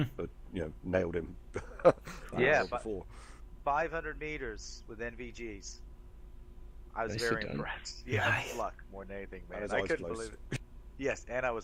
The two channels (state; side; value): identical; both; correlation 1.00